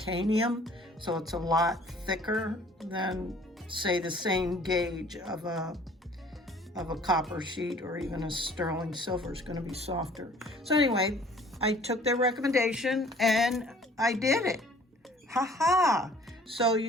so it's a lot thicker than, say, the same gauge of a copper sheet, or even a sterling silver is going to be softer. So anyway, I took their recommendation and I did it. Ha. So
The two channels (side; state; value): both; normal; correlation 0.53